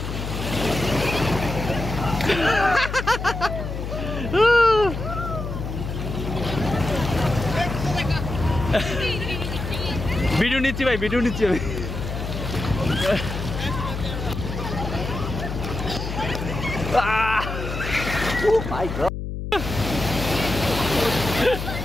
ভিডিও নিচ্ছি ভাই, ভিডিও নিচ্ছি আমি।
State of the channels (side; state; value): left; noise; hum, 5 dB below the sound